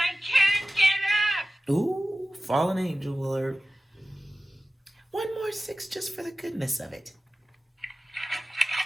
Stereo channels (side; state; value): both; normal; correlation 0.96